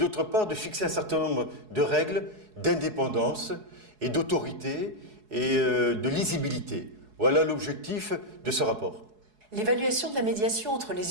part de fixer un certain nombre de règles d'indépendance et d'autorité et de lisibilité. Voilà l'objectif de ce rapport. L'évaluation de la médiation entre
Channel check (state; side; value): late; left; 4.7 ms